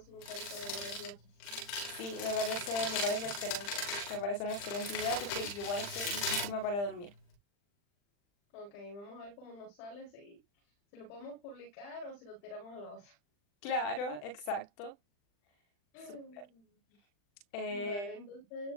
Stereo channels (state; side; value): late; right; 40 ms